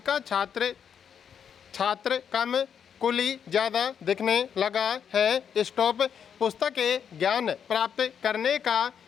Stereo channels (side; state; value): right; quieter; 7.8 dB